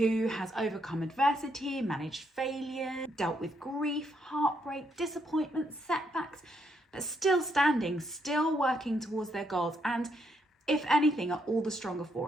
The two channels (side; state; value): both; normal; correlation 0.75